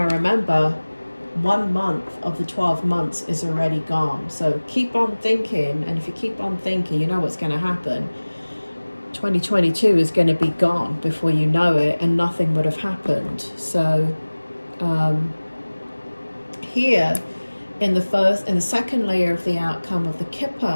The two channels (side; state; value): both; inverted; correlation -1.00